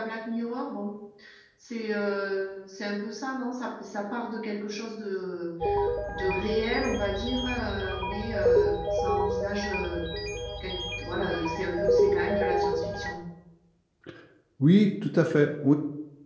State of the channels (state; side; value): identical; both; correlation 1.00